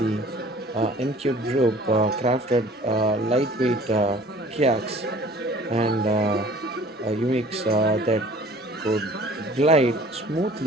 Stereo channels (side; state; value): both; normal; correlation 0.50